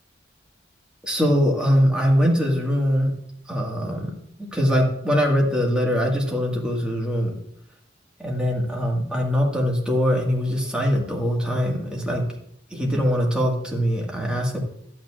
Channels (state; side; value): normal; both; correlation 0.82